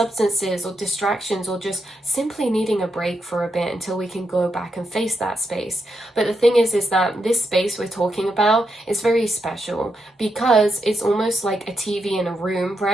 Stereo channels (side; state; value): both; normal; correlation 0.83